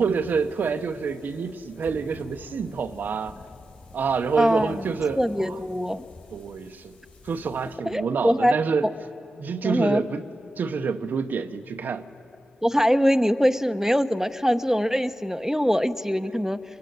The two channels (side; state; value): both; normal; correlation 0.92